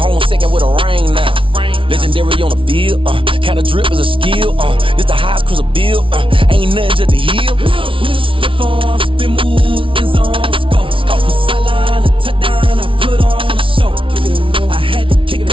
second with a rain now. Legendary on the field. Kind of drip is a skill. This the highest cruiser bill. Ain't nothing just to heal. We'll step on, spin move, in zone, scope. Scope for sideline, a touchdown, I put on a show. I had to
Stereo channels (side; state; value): left; late; 0.25 ms